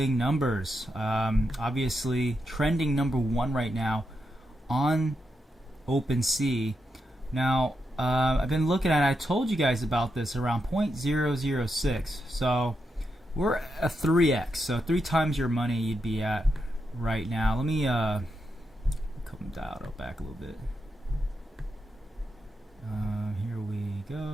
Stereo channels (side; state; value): both; normal; correlation 0.85